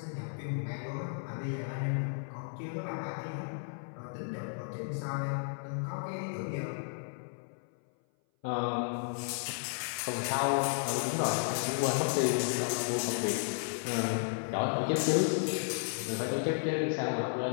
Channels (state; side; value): silent; right; 55 dB below the other